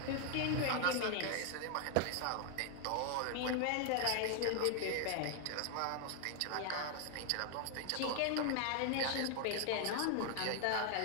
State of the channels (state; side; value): different; both; correlation 0.00